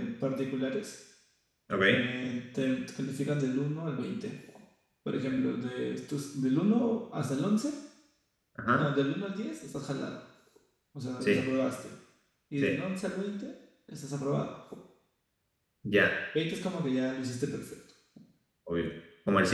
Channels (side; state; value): both; identical; correlation 1.00